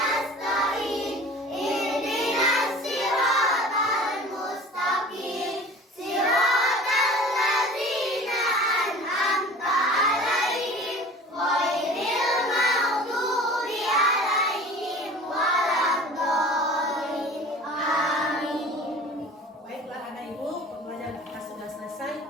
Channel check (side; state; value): both; normal; correlation 0.43